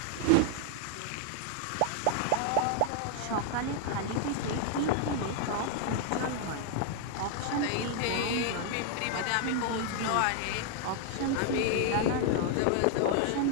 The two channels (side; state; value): both; different; correlation 0.00